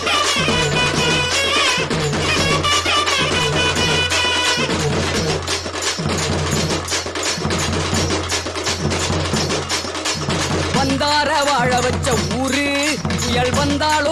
வந்தார வாழ வச்ச ஊரு புயல்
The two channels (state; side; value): identical; both; correlation 1.00